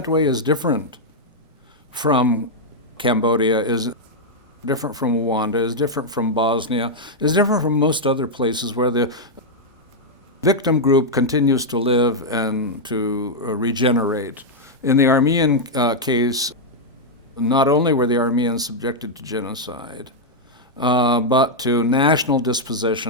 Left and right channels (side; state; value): both; normal; correlation -0.03